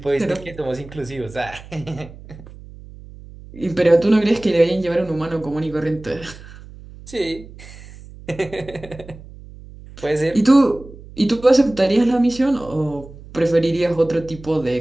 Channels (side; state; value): right; noise; hum, 18 dB below the sound